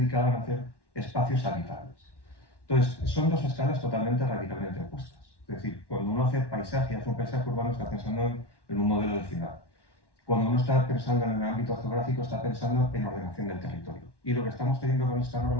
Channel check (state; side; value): late; right; 1.1 ms